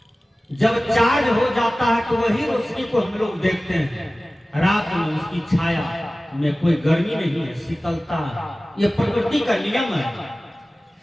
जब चार्ज हो जाता है तो वही रोशनी को हम लोग देखते हैं। रात में उसकी छाया में कोई गर्मी नहीं है, शीतलता है। यह प्रकृति का नियम है।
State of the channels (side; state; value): both; normal; correlation 0.97